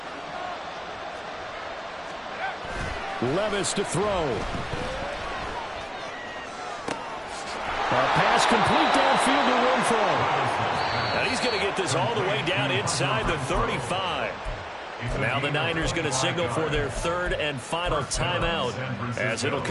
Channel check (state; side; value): identical; both; correlation 1.00